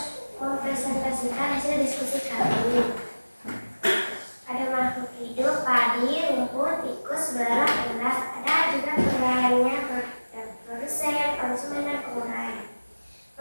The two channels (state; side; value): inverted; both; correlation -1.00